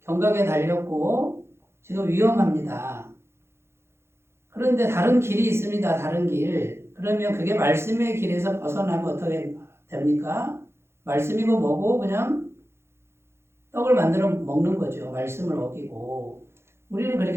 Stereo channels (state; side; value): late; left; 0.12 ms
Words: 경각에 달렸고 지금 위험합니다. 그런데 다른 길이 있습니다. 다른 길. 그러면 그게 말씀의 길에서 벗어나면 어떻게 됩니까? 말씀이고 뭐고 그냥 떡을 만들어 먹는 거죠. 말씀을 어기고. 우리는